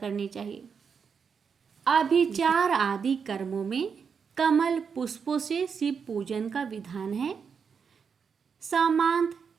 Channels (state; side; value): quieter; left; 6.3 dB